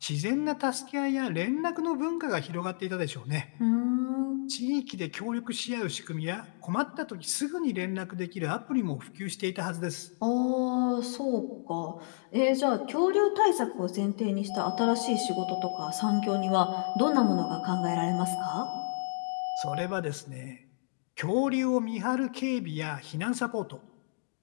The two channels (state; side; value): silent; right; digital silence